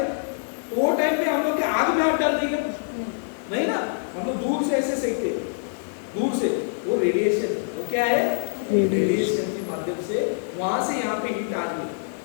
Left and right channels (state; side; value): silent; right; 62 dB below the other